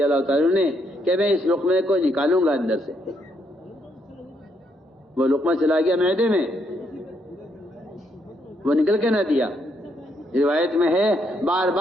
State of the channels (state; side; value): normal; both; correlation 0.75